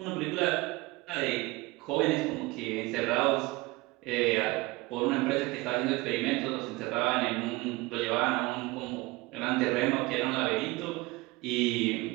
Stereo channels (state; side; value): quieter; left; 22.4 dB